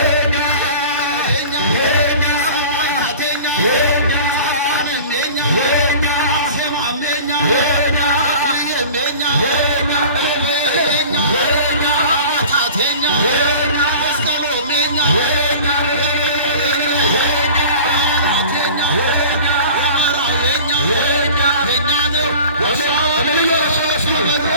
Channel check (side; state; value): both; inverted; correlation -0.40